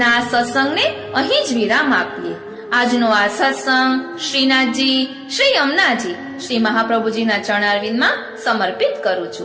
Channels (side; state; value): both; identical; correlation 1.00